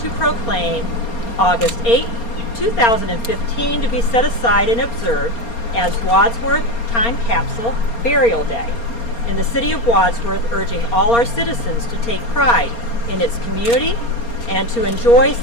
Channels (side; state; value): right; late; 4.3 ms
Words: proclaim August 8, 2015 to be set aside and observed as Wadsworth Time Capsule Burial Day in the City of Wadsworth, urging all our citizens to take pride in its community and to enjoy